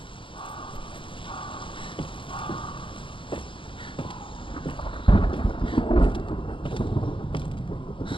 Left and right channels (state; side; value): late; right; 0.25 ms